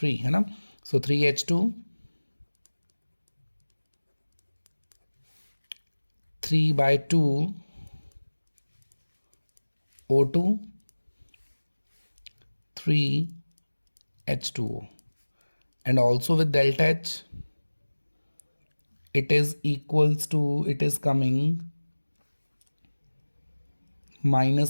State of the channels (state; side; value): inverted; both; correlation -1.00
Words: है ना? So 3H2, 3 by 2 O2, 3 H2O, and also with delta H it is equals to, it is coming